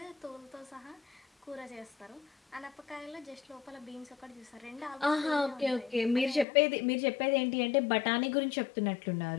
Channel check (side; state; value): right; drops out; at 6.5 s